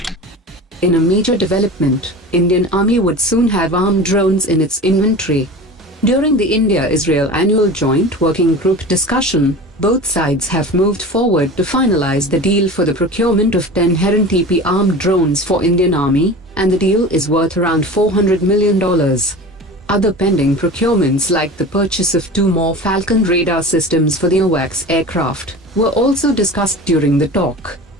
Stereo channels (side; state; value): both; normal; correlation 0.34